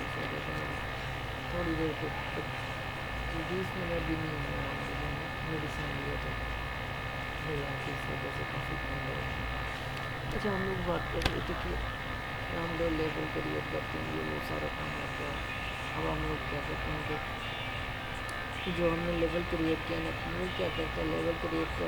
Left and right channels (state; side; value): identical; both; correlation 1.00